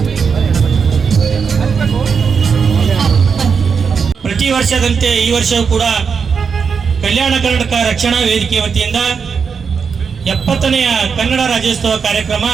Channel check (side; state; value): left; quieter; 6.0 dB